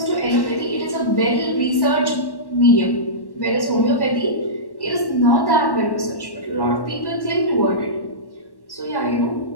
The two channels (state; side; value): late; right; 1.1 ms